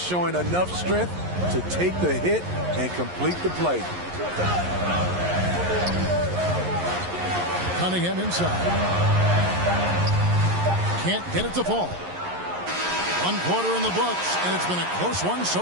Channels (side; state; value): left; late; 11 ms